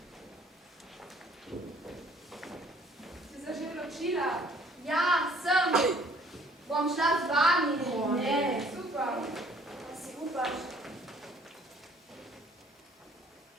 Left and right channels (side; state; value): both; normal; correlation 0.59